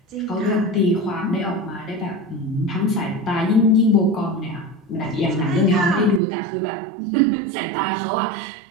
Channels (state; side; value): drops out; left; at 6.2 s